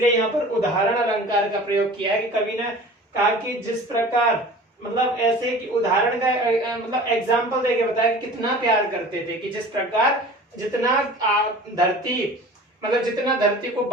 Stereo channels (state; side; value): normal; both; correlation 0.41